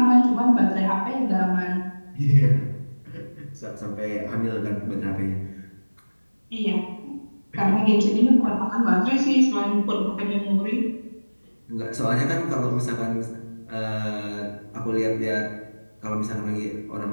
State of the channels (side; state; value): both; inverted; correlation -1.00